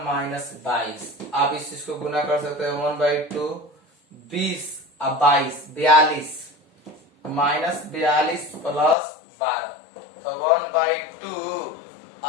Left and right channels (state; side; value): drops out; right; at 9.0 s